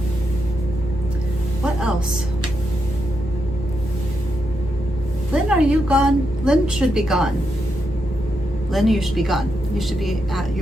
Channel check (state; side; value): normal; both; correlation 0.83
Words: What else? Lynn, are you gone? Lynn should be gone. Lynn, you should be gone. You should be at